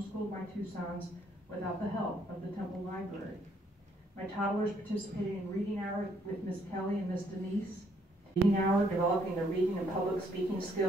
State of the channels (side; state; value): both; normal; correlation 0.68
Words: my two sons without the help of the Temple Library. My toddlers participated in reading hour with Miss Kelly and Miss Denise. Reading hour, developing their reading and public speaking